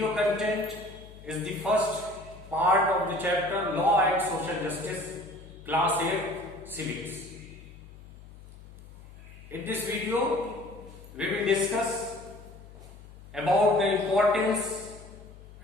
content is the first part of the chapter Law and Social Justice, Class 8 Civics. In this video, we will discuss about the importance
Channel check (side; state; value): left; noise; hum, 18 dB below the sound